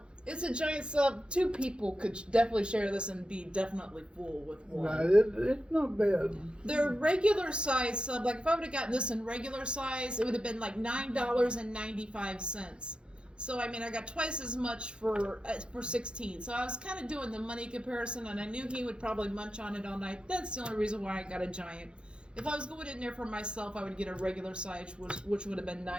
it's a giant sub. 2 people could definitely share this and be definitely full with one. Right, it's not bad. Their regular size sub, like if I would have gotten this in regular size, it would have been like $9.95. So I mean, I got twice as much for 16. So I was kind of doing the money comparison, and I knew he would probably munch on it all night. That's the only reason why I got a giant. If I was going in there for myself, I would get a regular size, which would have been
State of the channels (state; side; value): late; left; 0.054 ms